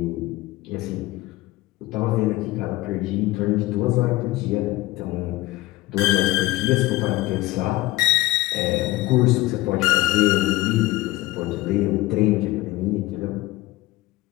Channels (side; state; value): right; quieter; 18.2 dB